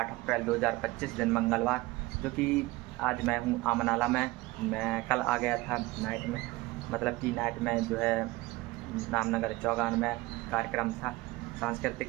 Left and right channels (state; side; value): quieter; left; 20.5 dB